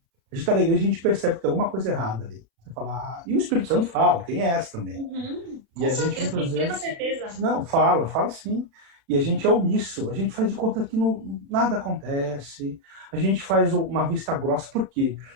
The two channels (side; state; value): left; late; 35 ms